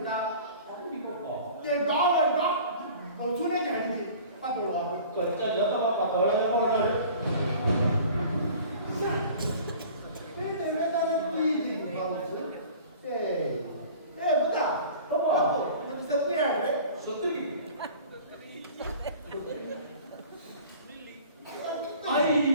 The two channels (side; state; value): both; inverted; correlation -0.45